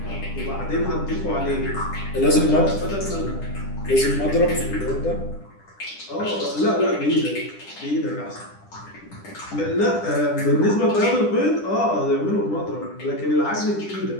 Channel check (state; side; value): late; right; 10 ms